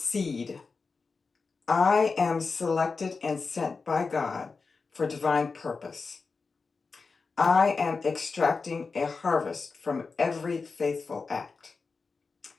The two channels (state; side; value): quieter; right; 4.5 dB